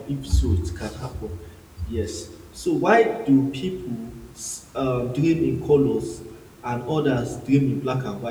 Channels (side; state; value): both; identical; correlation 1.00